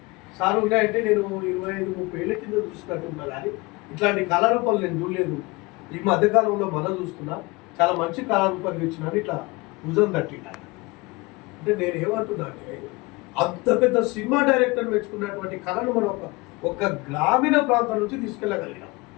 సార్? ఉన్నాయంటే నేను 25-30 ఏళ్ళ కింద చూసినట్టు ఉన్నా, కానీ ఇట్లాంటి కళారూపాలు నేను చూడలేదు. ఈ మధ్యకాలంలో మనం చూస్తున్నా, చాలా మంచి కళారూపాలు ఇచ్చినాను. ఇట్లా భుజం తట్టినా అంటే నేను ఏమంటున్నా అంటే, అంత పెద్ద సినిమా డైరెక్టర్ మెచ్చుకున్నటువంటి కళను మనం ఒక గ్రామీణ ప్రాంతం నుంచి తీసుకెళ్ళగలిగినాం,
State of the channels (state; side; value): quieter; right; 24.5 dB